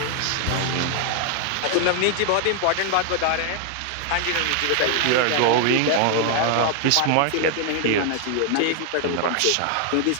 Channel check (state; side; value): different; both; correlation 0.00